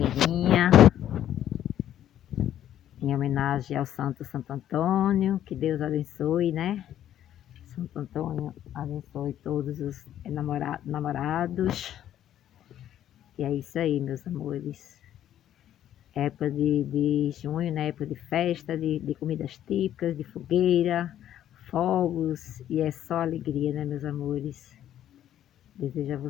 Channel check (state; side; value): quieter; right; 11.3 dB